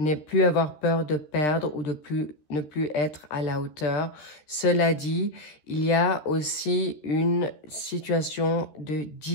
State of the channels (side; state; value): right; late; 13 ms